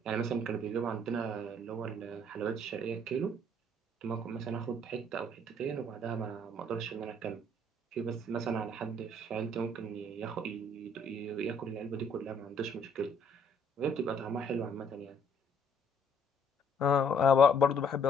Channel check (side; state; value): both; normal; correlation 0.63